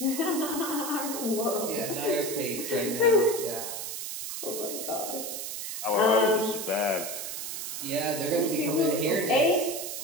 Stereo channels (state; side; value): noise; right; hiss, 5 dB below the sound